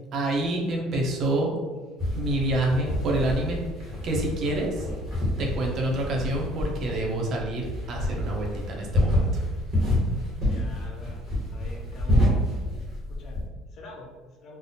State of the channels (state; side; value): normal; both; correlation 0.59